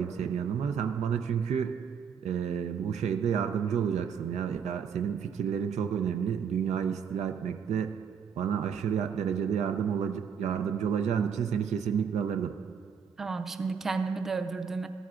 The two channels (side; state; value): left; quieter; 7.0 dB